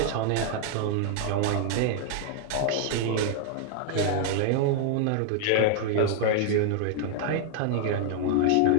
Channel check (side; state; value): both; different; correlation 0.00